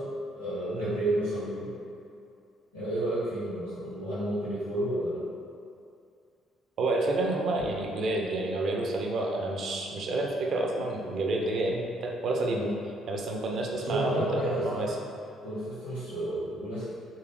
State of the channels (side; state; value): both; normal; correlation 0.68